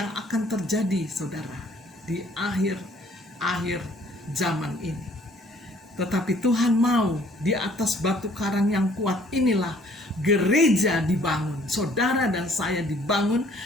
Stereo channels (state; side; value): normal; both; correlation 0.59